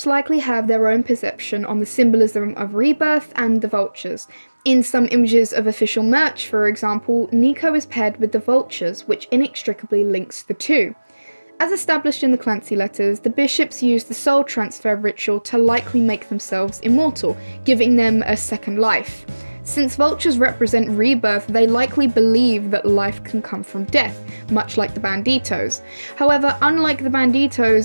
likely have their own perception on the symbolism of rebirth and the vultures. In some images of official merch, for example, Nico is paired with the vultures, which inextricably links the two. As established in the Clancy letters, the bishops use the soul transfer ritual to likely make themselves immortal, giving them a second life. Since vultures represent rebirth, they likely believe that life can come from death, much like the Banditos. However, unlike the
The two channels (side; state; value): both; inverted; correlation -1.00